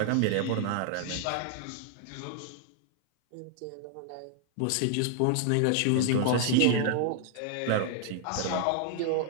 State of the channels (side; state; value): both; different; correlation 0.00